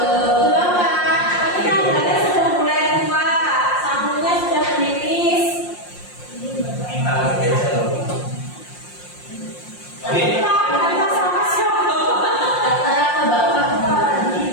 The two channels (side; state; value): right; late; 5.7 ms